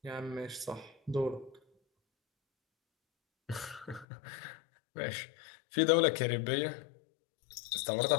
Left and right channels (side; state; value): right; drops out; at 4.0 s